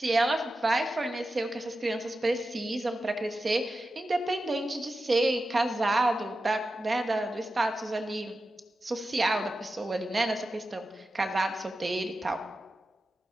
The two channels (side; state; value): both; normal; correlation 0.92